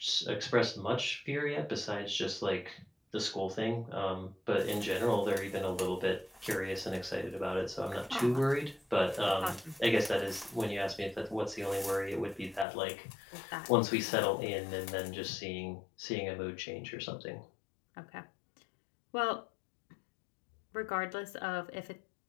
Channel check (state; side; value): drops out; right; at 12.7 s